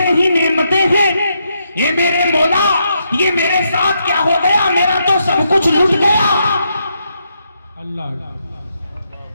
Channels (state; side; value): inverted; both; correlation -0.79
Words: ही नेमतें हैं। ये मेरे मौला, ये मेरे साथ क्या हो गया, मेरा तो सब कुछ लूट गया। अल्लाह,